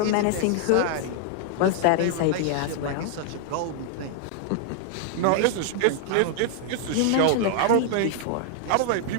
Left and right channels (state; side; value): different; both; correlation -0.01